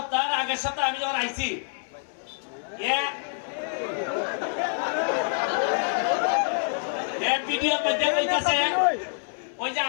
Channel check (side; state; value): right; silent; 60 dB below the other